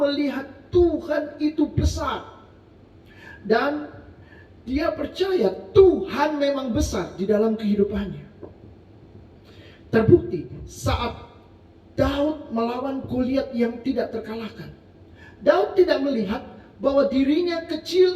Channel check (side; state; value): both; identical; correlation 1.00